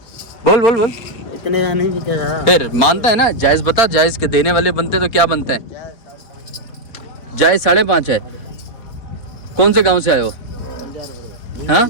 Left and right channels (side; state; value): right; late; 4.1 ms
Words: बोल इतने का नहीं बिकेगा। फिर मानता है ना? जायज बता, जायज के देने वाले बनते तो क्या बनते हैं? जायज 5.5 है। कौन से गांव से आए हो? हाँ,